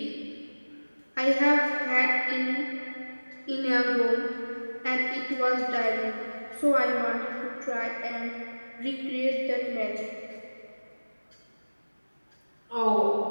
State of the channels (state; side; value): inverted; both; correlation -1.00